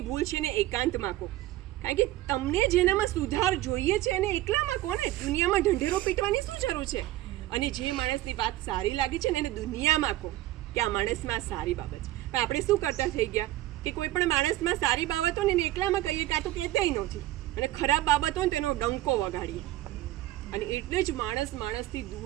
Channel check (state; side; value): quieter; left; 15.8 dB